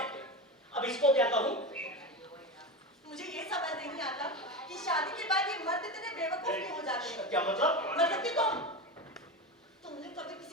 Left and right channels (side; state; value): both; normal; correlation 0.21